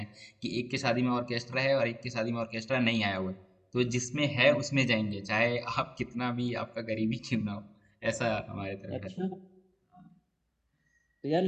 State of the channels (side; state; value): both; identical; correlation 1.00